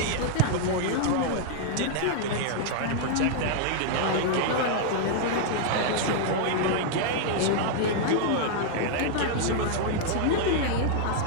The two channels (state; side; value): different; both; correlation -0.01